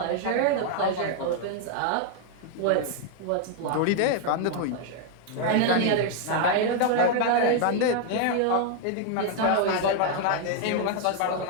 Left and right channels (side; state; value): both; different; correlation 0.00